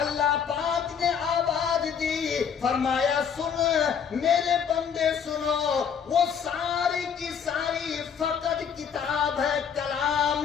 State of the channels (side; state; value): right; quieter; 7.3 dB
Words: پاک نے آواز دی، فرمایا سن میرے بندے سنو، وہ ساری کی ساری فقط کتاب ہے، کلام